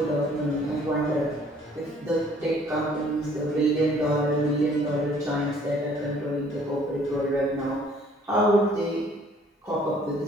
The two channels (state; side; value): normal; both; correlation 0.58